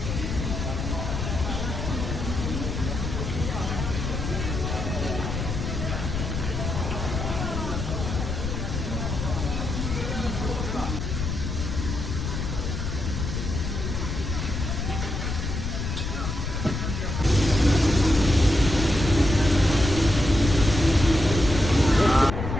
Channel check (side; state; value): left; noise; rumble, 3 dB below the sound